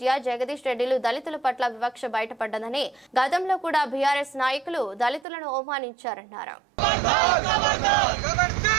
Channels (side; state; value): left; drops out; at 5.2 s